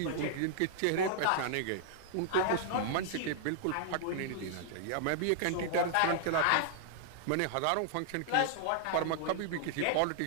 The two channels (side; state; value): both; different; correlation -0.01